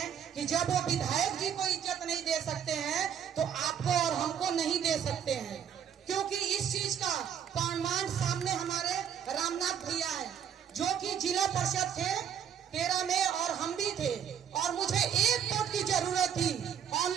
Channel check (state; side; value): quieter; left; 8.4 dB